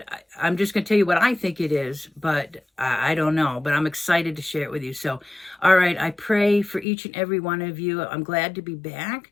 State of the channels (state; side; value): drops out; right; at 6.9 s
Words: I'm just going to tell you what I think it is, but I don't know. But I'm excited to share it with you. So, all right, I pray for each and every one of you. I'm glad to be back.